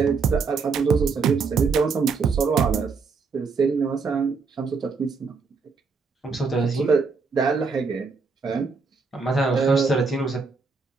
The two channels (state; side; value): quieter; left; 4.8 dB